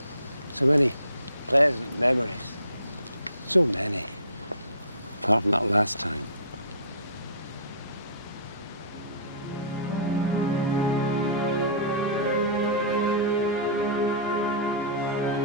So many pleasant memories. So many. Apart from that last time.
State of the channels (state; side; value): inverted; both; correlation -0.39